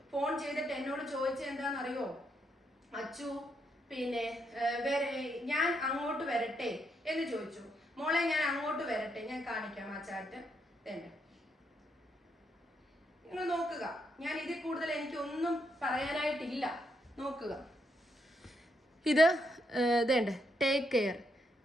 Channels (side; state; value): both; normal; correlation 0.78